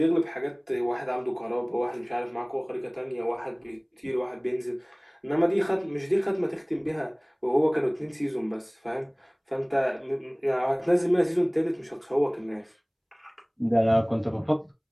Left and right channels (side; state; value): both; identical; correlation 1.00